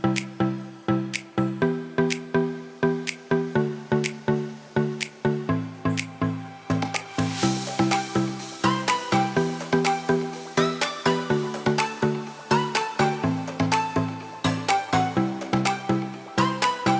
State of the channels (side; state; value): both; identical; correlation 1.00